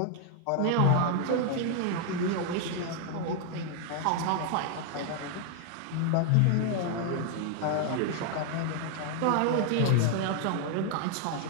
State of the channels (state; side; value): different; both; correlation 0.00